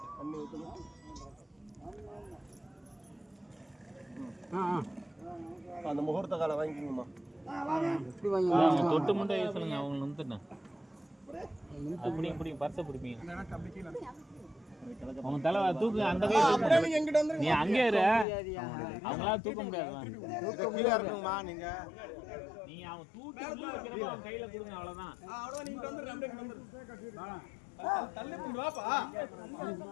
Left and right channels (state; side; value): drops out; right; at 18.2 s